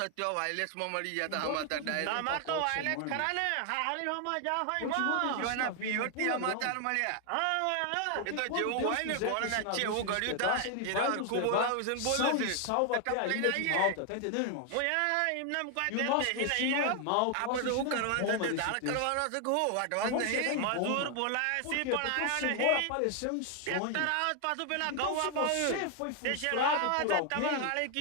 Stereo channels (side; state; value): both; different; correlation 0.00